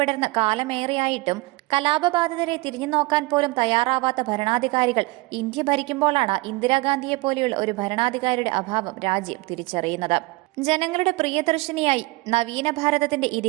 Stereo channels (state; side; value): quieter; left; 23.3 dB